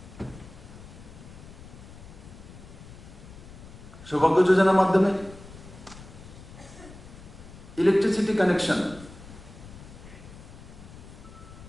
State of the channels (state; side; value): noise; left; rumble, 17 dB below the sound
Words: সৌভাগ্য যোজনার মাধ্যমে ইলেকট্রিসিটি কানেকশন